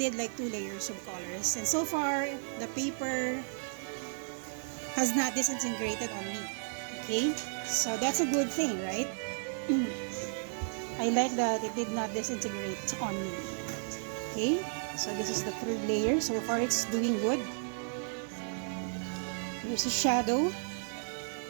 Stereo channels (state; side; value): silent; left; digital silence